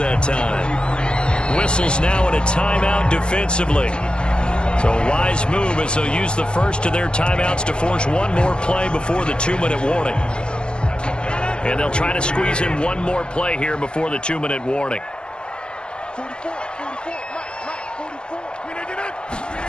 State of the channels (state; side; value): late; right; 0.052 ms